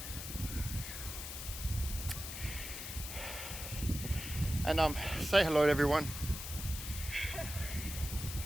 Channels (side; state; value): left; noise; hiss, 7 dB below the sound